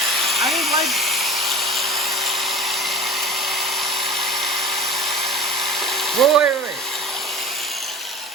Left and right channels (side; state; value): both; normal; correlation 0.37